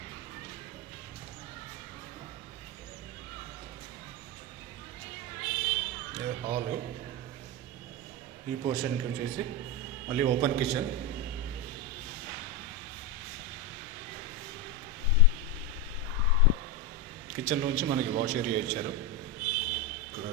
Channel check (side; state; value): both; normal; correlation 0.11